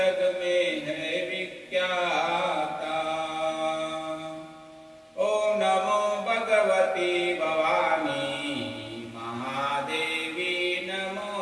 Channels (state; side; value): identical; both; correlation 1.00